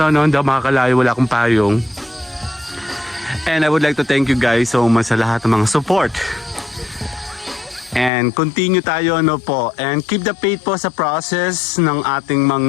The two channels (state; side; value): drops out; right; at 8.1 s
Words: no? Hindi ako makakalayo, wala akong payong. And I would like to thank you guys so much sa lahat ng mga support. And continue tayo, ano po, and keep the faith po sa process ng ating